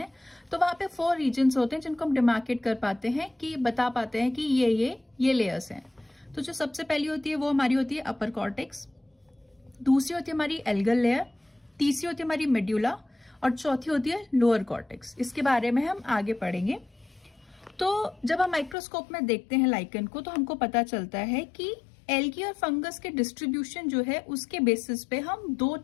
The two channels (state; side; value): drops out; right; at 18.8 s